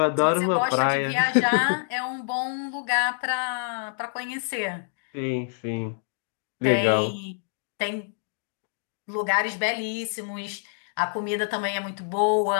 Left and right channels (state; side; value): silent; right; digital silence